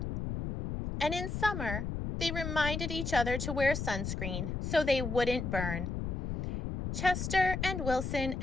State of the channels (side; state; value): left; noise; rumble, 3 dB below the sound